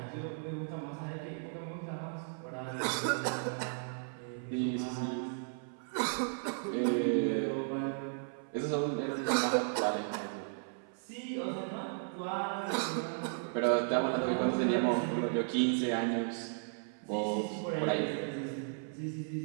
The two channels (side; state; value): left; silent; 54 dB below the other